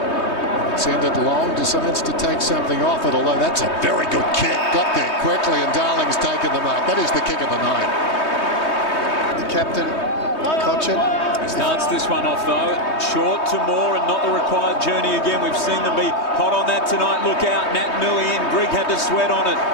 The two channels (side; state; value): right; late; 3.2 ms